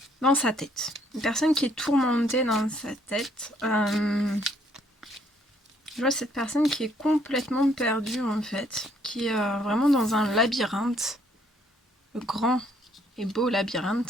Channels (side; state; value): both; normal; correlation 0.67